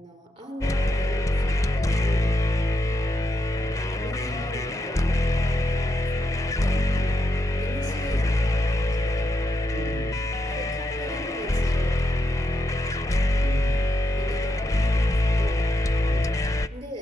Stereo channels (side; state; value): both; normal; correlation 0.82